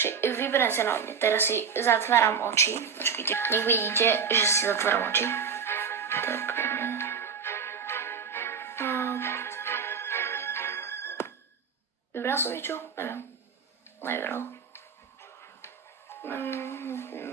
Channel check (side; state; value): left; quieter; 6.4 dB